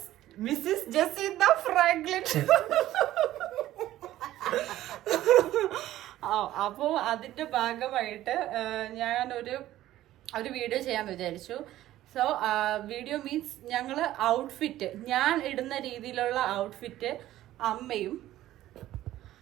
ജസീന്ത ഫ്രാങ്ക്ലിൻ. അപ്പോൾ അതിന്റെ ഭാഗമായിട്ട് ഞാൻ ഒരു വീഡിയോ ചെയ്യാൻ വിചാരിച്ചു. സോ വീഡിയോ മീൻസ് ഞങ്ങൾ ഔട്ട്ഫിറ്റ്, ഞാൻ ഇടുന്ന രീതിയിലുള്ള ഔട്ട്ഫിറ്റ്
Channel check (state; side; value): quieter; left; 14.2 dB